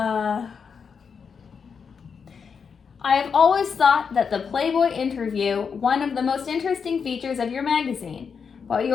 I have always thought that the Playboy interview, one of the most interesting features of your magazine. While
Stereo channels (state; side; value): quieter; right; 6.1 dB